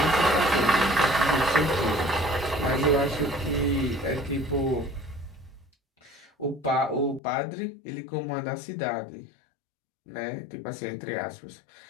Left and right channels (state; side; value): drops out; right; at 7.2 s